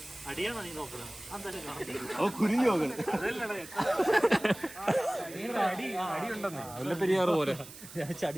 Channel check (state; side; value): noise; right; hiss, 16 dB below the sound